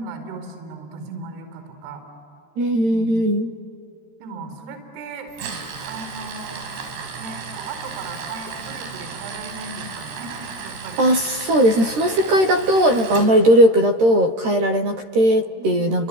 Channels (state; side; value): late; left; 13 ms